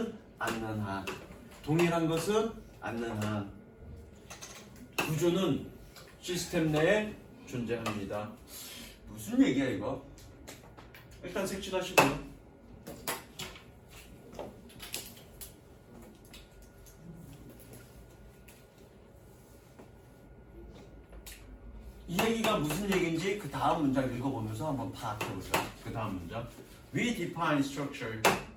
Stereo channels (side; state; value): both; identical; correlation 1.00